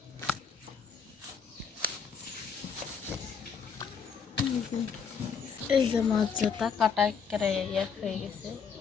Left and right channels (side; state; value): right; quieter; 6.3 dB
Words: যে এই যে মাছ যাতা কাটা একেবারে এক হয়ে গেছে।